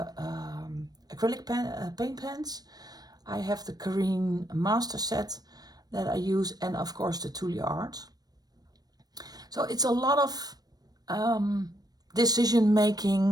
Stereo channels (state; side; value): late; left; 0.19 ms